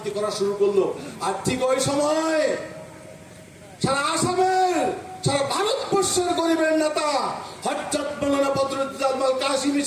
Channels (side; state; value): both; identical; correlation 1.00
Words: করা শুরু করলো। আর ঠিক ওই সময় সারা আসামের, সারা ভারতবর্ষের গরিবের নেতা হযরত মাওলানা বদরুদ্দোজা আজমল কাসিমি